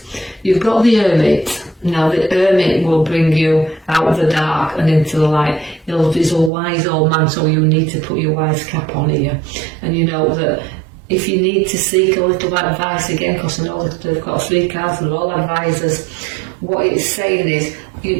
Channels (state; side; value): drops out; left; at 6.5 s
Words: You've got the Hermit. Now the Hermit will bring you out of the dark and into the light. He's a wise old man, so you need to put your wise cap on here. And you know that if you need to seek a little advice again, because I know that they've got 3 cards, they're all advisors, what it's saying